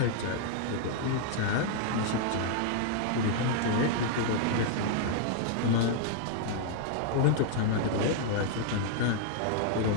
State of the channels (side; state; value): both; different; correlation 0.00